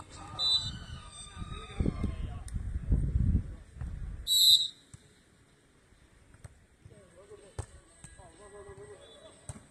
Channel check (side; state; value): both; identical; correlation 1.00